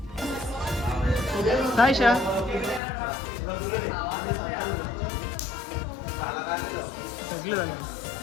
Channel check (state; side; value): drops out; right; at 2.8 s